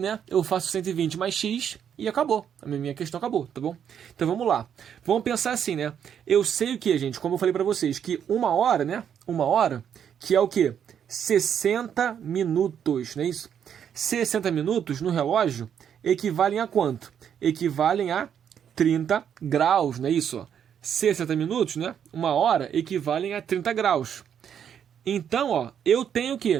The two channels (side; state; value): left; quieter; 8.6 dB